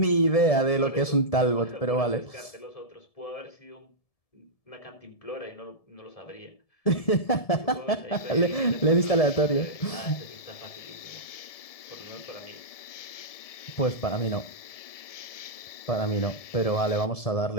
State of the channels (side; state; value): right; late; 1.7 ms